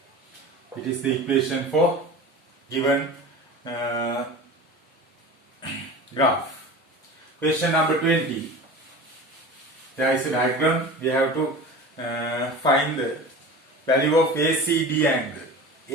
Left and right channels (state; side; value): normal; both; correlation 0.34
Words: It is the equation for given graph. Question number 20. There is a diagram. We have to find the value of ACD angle.